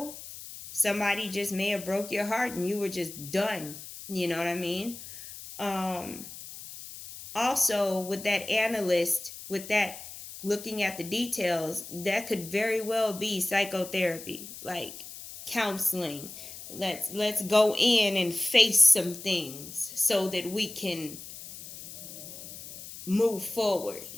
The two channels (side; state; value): left; noise; hiss, 13 dB below the sound